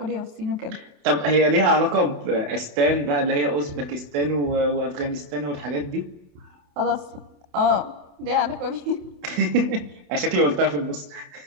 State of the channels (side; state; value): left; late; 28 ms